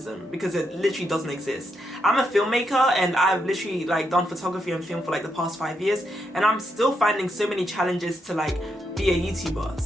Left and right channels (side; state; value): both; normal; correlation 0.81